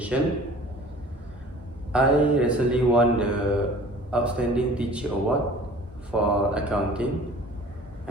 I recently won the Outstanding Teacher Award for accounting,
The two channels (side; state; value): both; normal; correlation 0.46